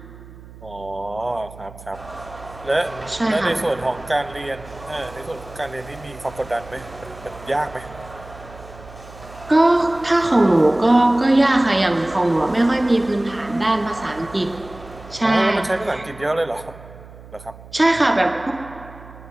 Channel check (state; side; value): noise; right; hum, 18 dB below the sound